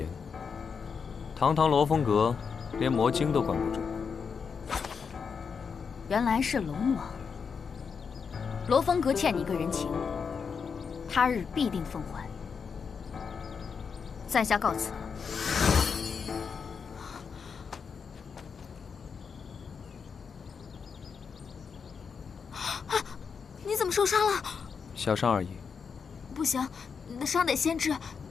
堂堂罗峰阁，连魔精都管不住。原来是龙王。罗峰阁欠你一个人情，他日必定奉还。在下告辞了。 你怎么受伤了？小伤而已。不行，你的伤得先治，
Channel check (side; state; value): right; quieter; 6.0 dB